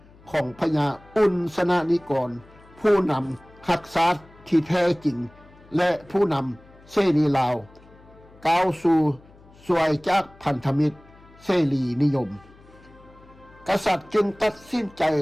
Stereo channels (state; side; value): noise; left; hum, 25 dB below the sound